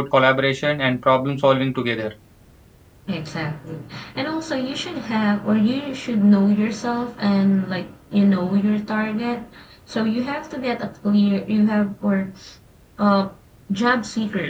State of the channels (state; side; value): identical; both; correlation 1.00